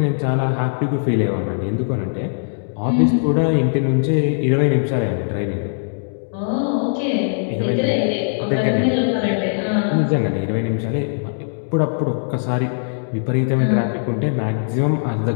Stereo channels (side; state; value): right; silent; digital silence